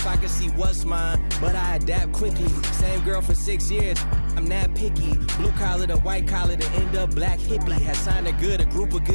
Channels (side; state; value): both; inverted; correlation -1.00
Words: I can see what's mine. But I adapt quickly. Same girl for 6 years. I'm not picky. Blue collar to white collar to end up black hippie. Has signed a group of